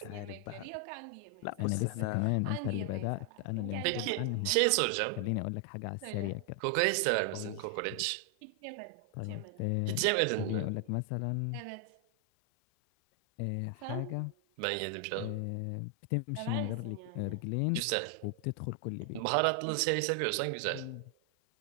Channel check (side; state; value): both; different; correlation 0.00